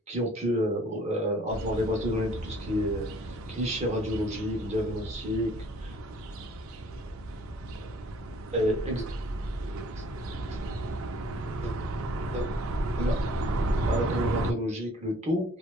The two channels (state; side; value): normal; both; correlation 0.56